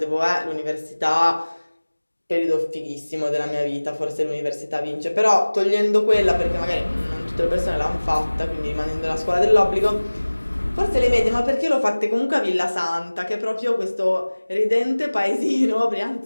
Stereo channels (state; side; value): inverted; both; correlation -1.00